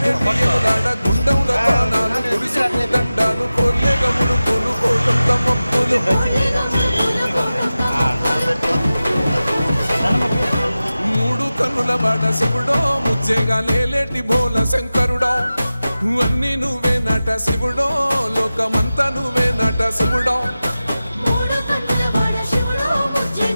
గుండముల ప్రాణాలు గుడిసుకు దండాలు కొల్లేగములు కొలు కోటొక్క మొక్కులు మూడు కన్నుల బాట శివుడో ముచ్చేగా లేలేటి బోల శంకరుడో అన్నీ నువ్వే నట శివుడో లోకమంతా నువ్వే నట శివుడో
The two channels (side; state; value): both; inverted; correlation -0.95